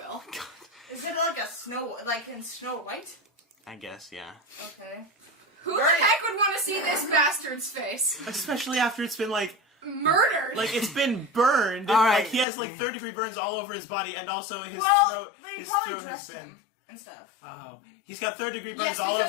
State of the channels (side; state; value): right; drops out; at 12.5 s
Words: Is it like in Snow White? I guess, yeah. Okay. Who the heck would want to see this bastard's face? Especially after it's been Murdered. like it's been burned. All right. Like he has like 3rd-degree burns all over his body, and also his Well, they his probably throat has dressed been. him and stuff. Oh, he's got 3rd-degree burns Yes, all